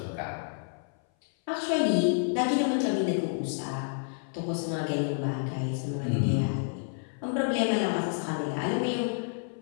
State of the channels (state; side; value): silent; right; 58 dB below the other